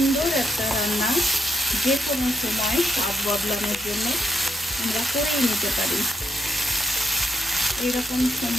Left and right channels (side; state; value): both; normal; correlation 0.77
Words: একটা রান্না, যে কোনো সময় স্বাদ বদলানোর জন্য আমরা করেই নিতে পারি। এরকম